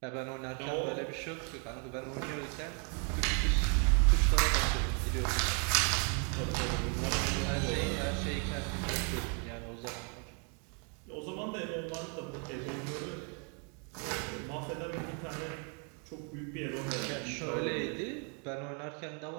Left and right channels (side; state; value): left; quieter; 38.8 dB